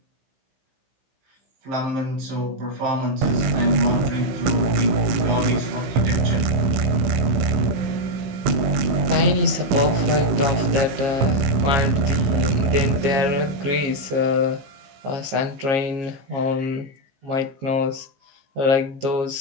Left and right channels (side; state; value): left; late; 15 ms